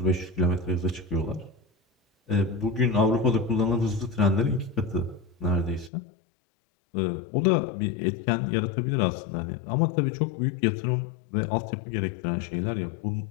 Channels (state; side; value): drops out; right; at 5.9 s